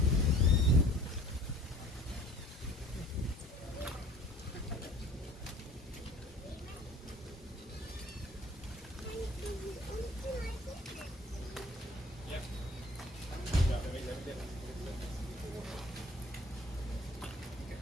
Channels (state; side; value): normal; both; correlation 0.50